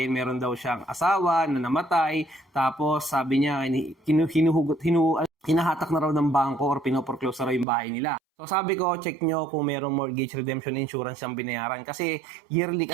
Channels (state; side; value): drops out; left; at 7.7 s